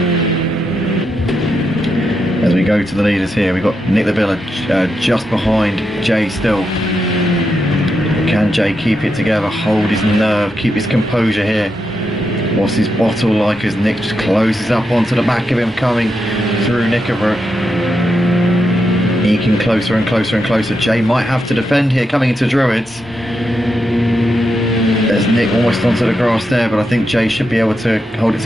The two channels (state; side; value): normal; both; correlation 0.85